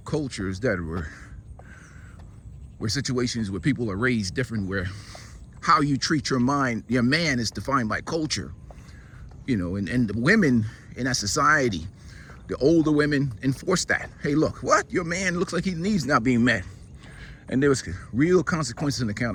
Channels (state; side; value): identical; both; correlation 1.00